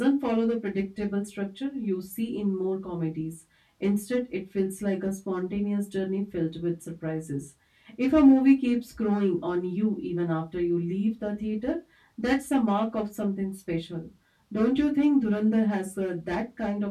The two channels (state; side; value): identical; both; correlation 1.00